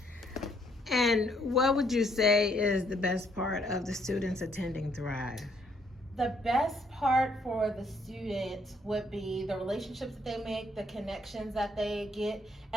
And what would you say is the best part of the students attending Thrive? The best part for the student would be the relationships that they make, the connections that they get,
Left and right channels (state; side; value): normal; both; correlation 0.69